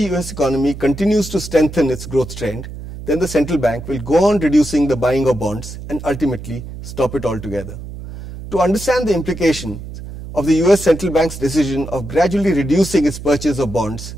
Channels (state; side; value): noise; right; hum, 11 dB below the sound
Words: US economy continues to strengthen its growth trend, then the central bank will go on reducing the buying of bonds and ultimately stop it altogether. To understand the implications of the US Central Bank's decision of gradually reducing its purchase of bonds,